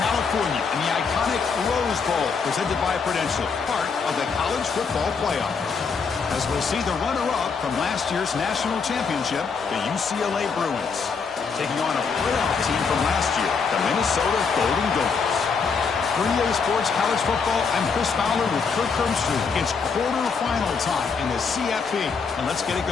and the iconic Rose Bowl, presented by Prudential, part of the college football playoff. As we'll see the runner-up from last year's national championship, the UCLA Bruins, taking on a playoff team from last year, the Minnesota Golden Gophers. For EA Sports College Football, I'm Chris Fowler with Kirk Hermstreet. It's quarterfinal time in the CFP, and let's get it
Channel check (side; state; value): right; quieter; 5.4 dB